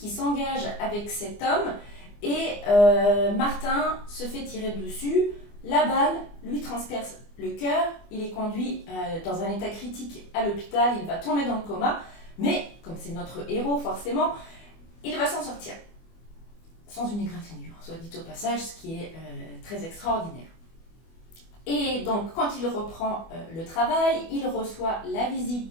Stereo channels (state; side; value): late; right; 24 ms